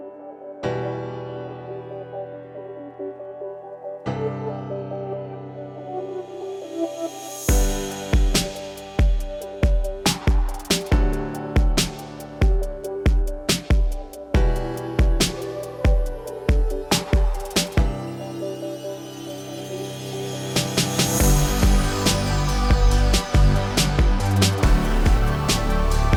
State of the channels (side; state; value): both; identical; correlation 1.00